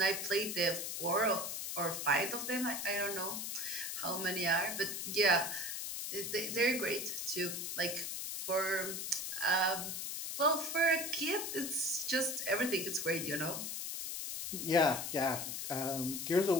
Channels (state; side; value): noise; left; hiss, 4 dB below the sound